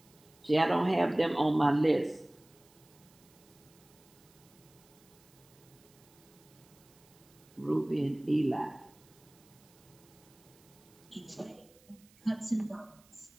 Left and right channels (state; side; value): noise; right; hiss, 28 dB below the sound